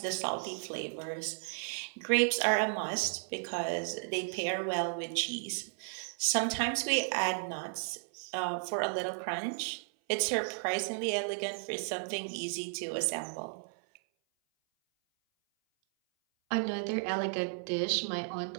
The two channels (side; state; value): left; silent; 55 dB below the other